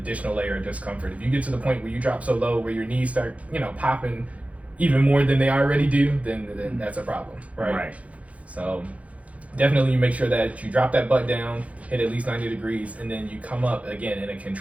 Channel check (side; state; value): left; late; 0.066 ms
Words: layer of discomfort. If you get to the point where you drop so low where your knees start, popping even more than they already do, then that's a problem, right? Right. So definitely you make sure that you drop that butt down, hit at least 90 degrees, and then you come up again in a